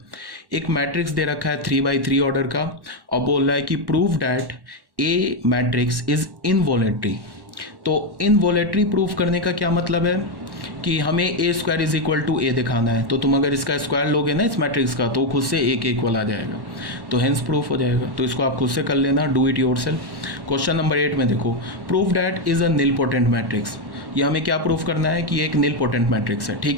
एक मैट्रिक्स दे रखा है 3x3 ऑर्डर का और बोल रहा है कि prove that a matrix is involutory. तो इनवॉलेटरी प्रूफ करने का क्या मतलब है कि हमें ए स्क्वायर इज इक्वल टू ए दिखाना है। तो तुम अगर इसका स्क्वायर लोगे ना इस मैट्रिक्स का, तो खुद से ए के इक्वल आ जाएगा, तो हेंस प्रूफ हो जाएगा। तो इसको आप खुद से कर लेना, do it yourself. Question number 8 में देखो, proof that is a nilpotent matrix. ये हमें क्या प्रूफ करना है कि एक निलपोटेंट मैट्रिक्स है।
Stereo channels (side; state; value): left; late; 1.1 ms